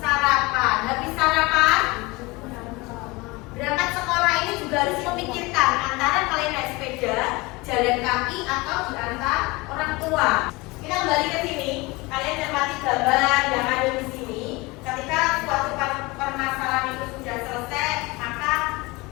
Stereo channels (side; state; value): right; quieter; 23.7 dB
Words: Habis sarapan? Berangkat sekolah ini juga harus memikirkan antara kalian naik sepeda, jalan kaki, atau diantar orang tua. Kita kembali ke sini. Kalian cermati gambar yang ada di sini. Ketika suatu permasalahan itu sudah selesai, maka